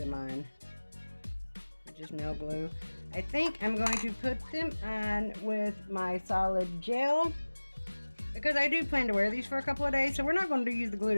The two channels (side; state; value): both; inverted; correlation -1.00